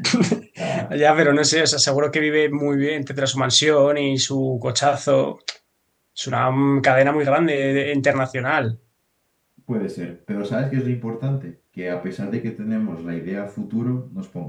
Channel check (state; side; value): identical; both; correlation 1.00